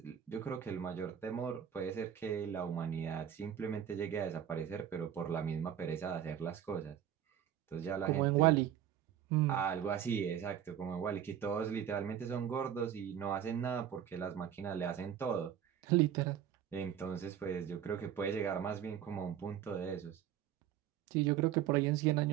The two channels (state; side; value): quieter; left; 9.8 dB